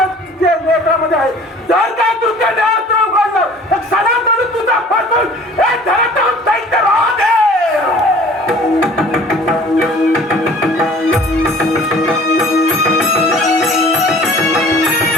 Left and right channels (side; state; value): both; normal; correlation 0.49